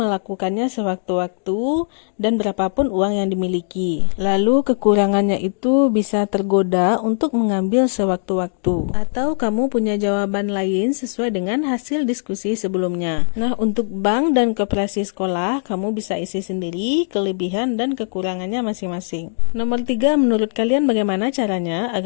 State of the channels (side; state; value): right; silent; digital silence